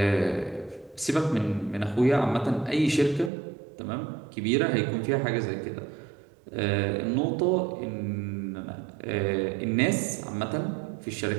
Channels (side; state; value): left; drops out; at 3.3 s